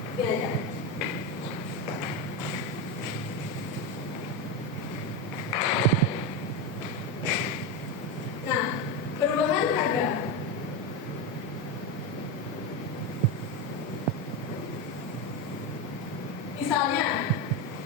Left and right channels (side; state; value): both; normal; correlation 0.14